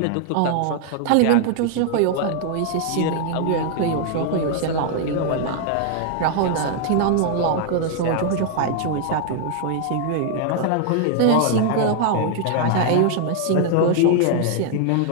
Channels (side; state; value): both; different; correlation 0.00